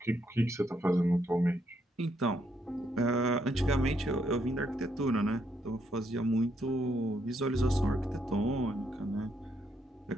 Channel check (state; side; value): normal; both; correlation 0.75